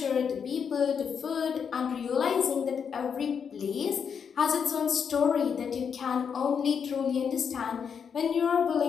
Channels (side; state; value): right; quieter; 6.9 dB